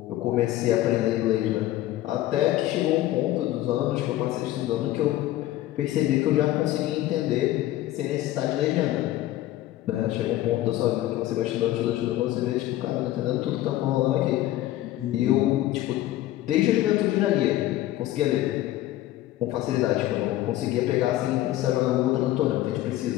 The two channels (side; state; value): right; quieter; 14.8 dB